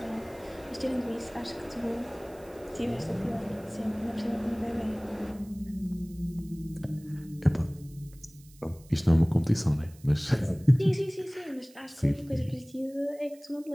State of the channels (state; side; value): noise; right; hiss, 25 dB below the sound